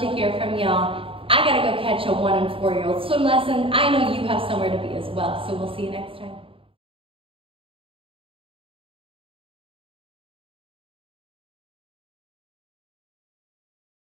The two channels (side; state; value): left; late; 0.26 ms